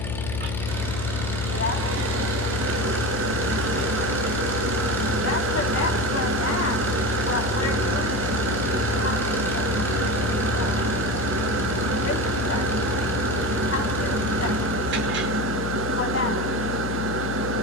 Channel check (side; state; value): left; noise; hum, 4 dB below the sound